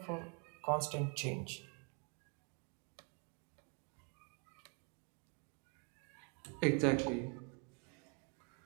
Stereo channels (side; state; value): left; quieter; 36.7 dB